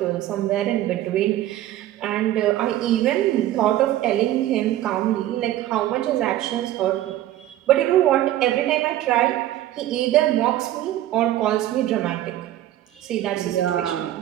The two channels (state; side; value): quieter; left; 13.6 dB